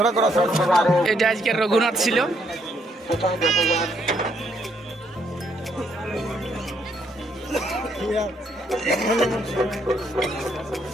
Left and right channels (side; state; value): both; normal; correlation 0.72